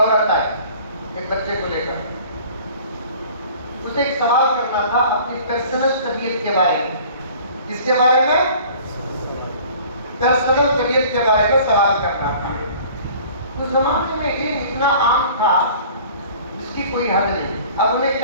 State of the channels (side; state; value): both; inverted; correlation -0.48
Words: آئی ایک بچے کو لے کر، اسے ایک سوال کرنا تھا اپنی پرسنل طبیعت کے بارے میں، کس کے بارے میں، پرسنل طبیعت کے بارے میں سوال کرنا تھا۔ اس زمانے میں علم اتنا عام تھا جس کی کوئی حد نہیں، اب انہیں